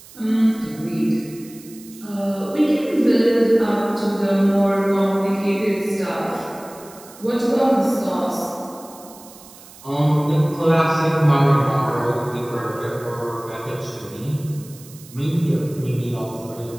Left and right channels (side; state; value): right; noise; hiss, 20 dB below the sound